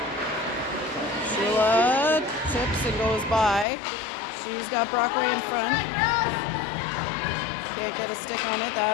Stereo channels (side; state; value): right; drops out; at 3.7 s